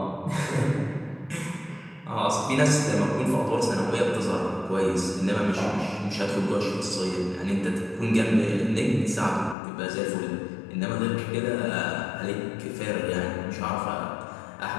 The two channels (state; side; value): drops out; right; at 9.6 s